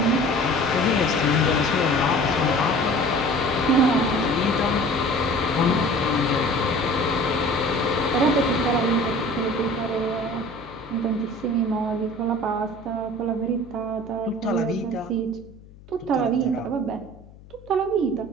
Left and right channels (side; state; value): left; noise; hum, 22 dB below the sound